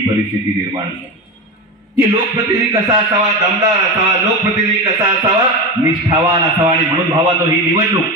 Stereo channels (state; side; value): normal; both; correlation 0.21